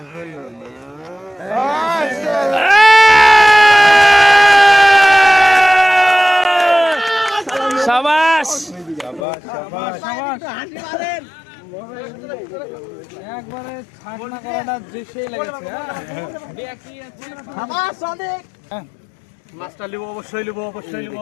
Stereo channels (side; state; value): right; drops out; at 9.2 s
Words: শাবাশ একবারে ছাড়না করাটা দৃশ্যই লেগেছে। মাছটা লিবো অবশ্যই লিবো